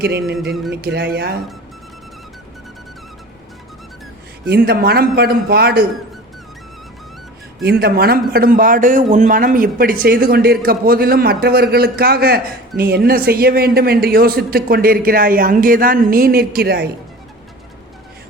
என்று நினைக்கிறாயா? இந்த மனம் படும் பாடு உன் மனம் இப்படி செய்து கொண்டிருக்க போதிலும் மற்றவர்களுக்காக நீ என்ன செய்ய வேண்டும் என்று யோசித்து கொண்டிருக்கிறாய். அங்கேதான் நீ நிற்கிறாய்.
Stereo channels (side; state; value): both; normal; correlation 0.39